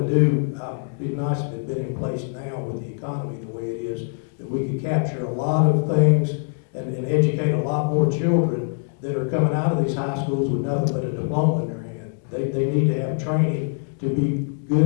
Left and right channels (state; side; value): silent; right; 63 dB below the other